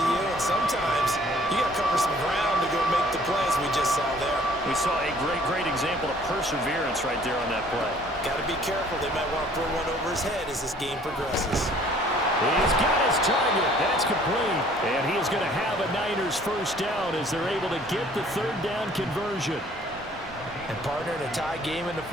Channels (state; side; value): normal; both; correlation 0.56